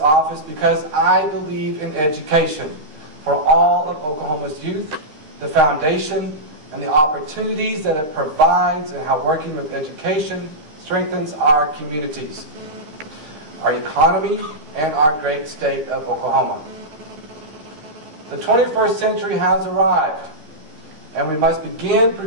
because I believe in education for all of Oklahoma's youth, the foundation, and the opportunities that it provides, and how working with education strengthens our communities, our economy, and our great state of Oklahoma. The 21st century has arrived, and we must begin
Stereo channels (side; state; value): left; late; 13 ms